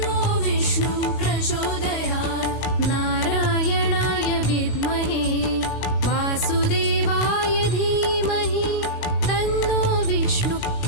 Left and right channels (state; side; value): late; right; 16 ms